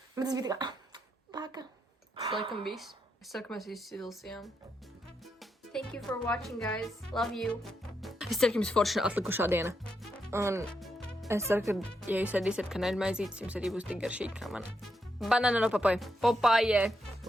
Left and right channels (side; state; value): both; normal; correlation 0.82